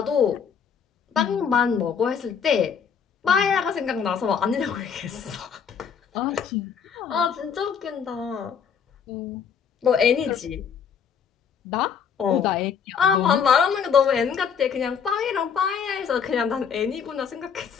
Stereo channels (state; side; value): quieter; right; 7.0 dB